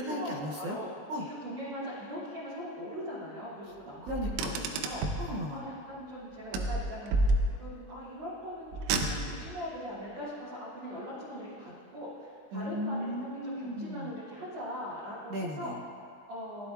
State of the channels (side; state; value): left; late; 21 ms